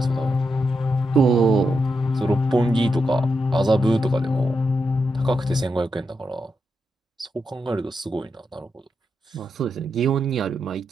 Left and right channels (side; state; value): both; normal; correlation 0.85